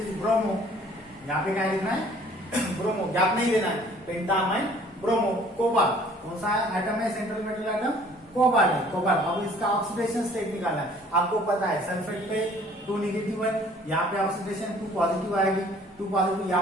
ब्रोमो, यहाँ पे क्या लिखना है ब्रोमो, गैप नहीं देना है, पेंटा अमाइन ब्रोमो। कोबाल्ट कौन सा एटम है, सेंट्रल मेटल एटम कोबाल्ट है, कोबाल्ट। अब इसका ऑक्सीडेशन स्टेट निकालना है। आपको पता है सल्फेट पे 2 नेगेटिव है, यहाँ पे ऑक्सीडेशन 2 पॉजिटिव आएगी, 2 पॉजिटिव।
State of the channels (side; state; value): both; normal; correlation 0.55